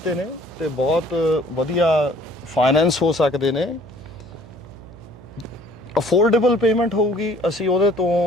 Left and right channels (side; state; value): right; noise; hum, 19 dB below the sound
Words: ਨੇ ਤੇ ਬਹੁਤ ਵਧੀਆ ਫਾਈਨੈਂਸ ਹੋ ਸਕਦੇ ਨੇ, ਅਫੋਰਡੇਬਲ ਪੇਮੈਂਟ ਹੋਊਗੀ, ਅਸੀਂ ਉਹਦੇ ਤੋਂ